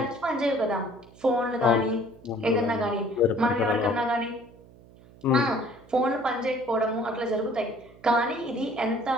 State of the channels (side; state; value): right; noise; hum, 24 dB below the sound